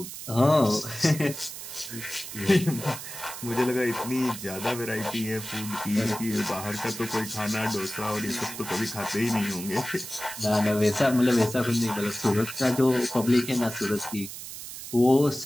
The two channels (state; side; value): noise; right; hiss, 10 dB below the sound